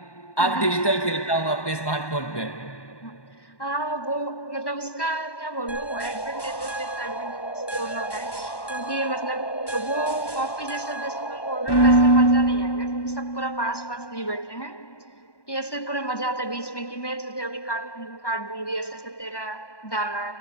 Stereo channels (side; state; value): right; late; 1.1 ms